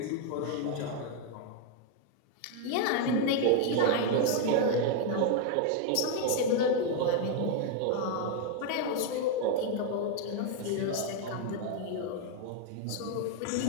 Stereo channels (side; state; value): both; different; correlation 0.01